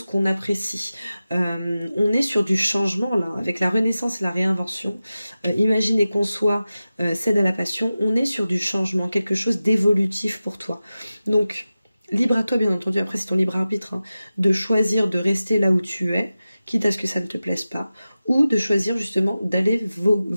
qu'on apprécie. On est sur du changement là, avec la renaissance et la réinvention. Imaginez qu'on soit cède à la passion, on est sur du changement, quelque chose d'évolutif pour toi. Donc, libre à toi bien entendu, après c'est ton libre arbitre, hein, de choisir de rester là où tu es, quitte à ce que ça ne te plaise pas, ou de choisir justement d'aller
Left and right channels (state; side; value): inverted; both; correlation -0.95